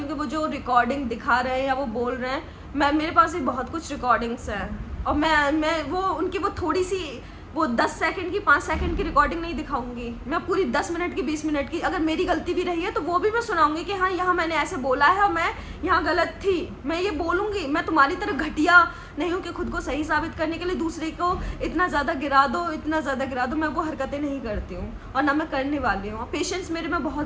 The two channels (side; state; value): both; identical; correlation 1.00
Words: हूँ कि वो जो रिकॉर्डिंग दिखा रहे हैं या वो बोल रहे हैं, मेरे पास भी बहुत कुछ रिकॉर्डिंग्स हैं, और मैं वो उनकी वो थोड़ी सी वो 10 सेकंड की 5 सेकंड की रिकॉर्डिंग नहीं दिखाऊंगी, मैं पूरी 10 मिनट की 20 मिनट की, अगर मेरी गलती भी रही है तो वो भी मैं सुनाऊंगी कि हाँ यहाँ मैंने ऐसे बोला है और मैं यहाँ गलत थी, मैं ये बोलूँगी। मैं तुम्हारी तरह घटिया नहीं हूँ कि खुद को सही साबित करने के लिए दूसरे को इतना ज़्यादा गिरा दो, इतना ज़्यादा गिरा दो, मैं वो हरकतें नहीं करती हूँ और ना मैं करने वाली हूँ। पेशेंस मेरे में